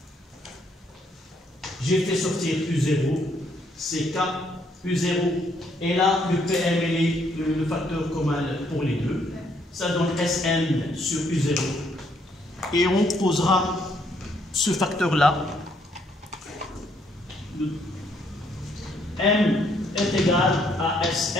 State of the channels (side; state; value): both; normal; correlation 0.70